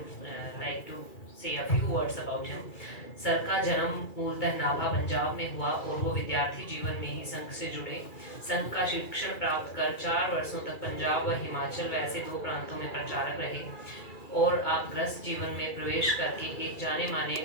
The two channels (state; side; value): late; right; 2.4 ms